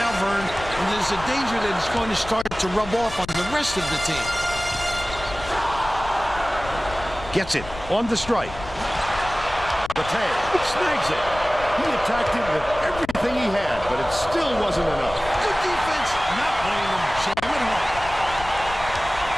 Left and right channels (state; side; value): noise; left; rumble, 14 dB below the sound